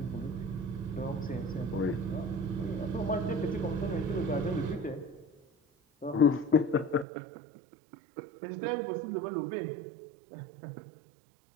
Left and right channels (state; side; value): drops out; left; at 7.1 s